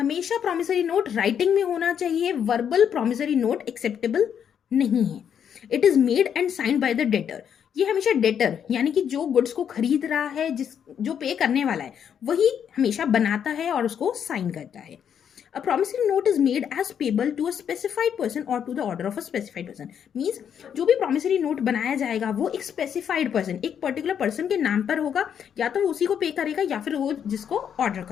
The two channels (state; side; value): quieter; right; 8.3 dB